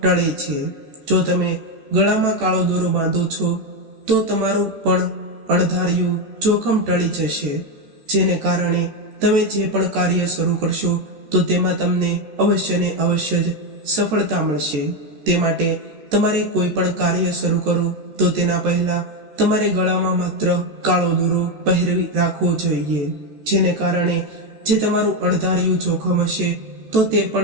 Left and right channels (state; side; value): late; left; 14 ms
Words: ટળે છે. જો તમે ગળામાં કાળો દોરો બાંધો છો તો તમારું પણ અણધાર્યું જોખમ ટળી જશે, જેને કારણે તમે જે પણ કાર્ય શરૂ કરશો તો તેમાં તમને અવશ્ય ને અવશ્ય જ સફળતા મળશે. તે માટે તમારે કોઈ પણ કાર્ય શરૂ કરો તો તેના પહેલા તમારે ગળામાં માત્ર કાળો દોરો પહેરી રાખવો જોઈએ, જેને કારણે જે તમારું અણધાર્યું જોખમ હશે તો તે